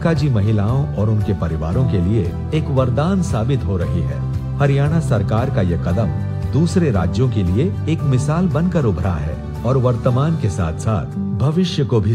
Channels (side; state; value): both; identical; correlation 1.00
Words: महिलाओं और उनके परिवारों के लिए एक वरदान साबित हो रही है। हरियाणा सरकार का यह कदम दूसरे राज्यों के लिए एक मिसाल बनकर उभरा है और वर्तमान के साथ साथ भविष्य को भी